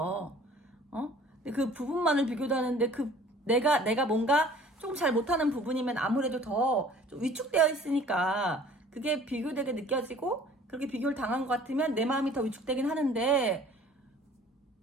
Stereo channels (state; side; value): normal; both; correlation 0.51